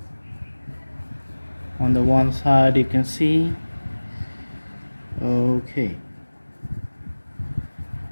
On the one side you can see. Okay,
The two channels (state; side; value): inverted; both; correlation -1.00